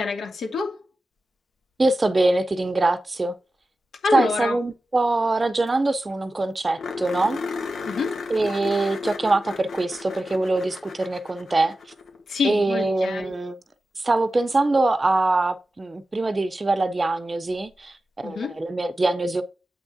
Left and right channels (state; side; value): normal; both; correlation 0.93